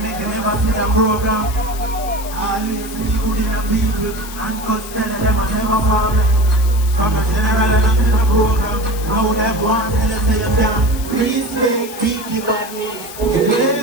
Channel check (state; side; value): noise; left; hiss, 13 dB below the sound